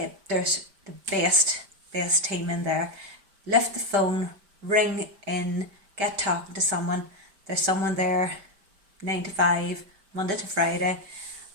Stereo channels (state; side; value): late; left; 5.1 ms